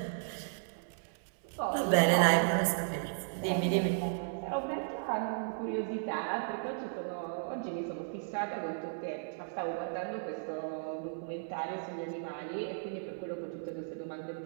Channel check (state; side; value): silent; left; 54 dB below the other